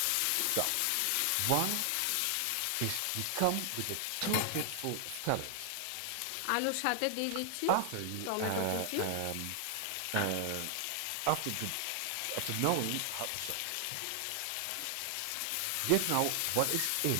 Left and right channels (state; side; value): different; both; correlation 0.00